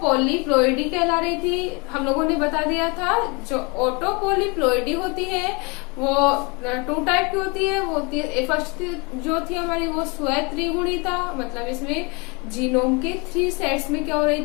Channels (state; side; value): quieter; right; 29.7 dB